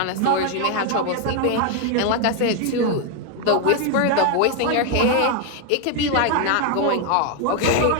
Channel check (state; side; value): different; both; correlation 0.01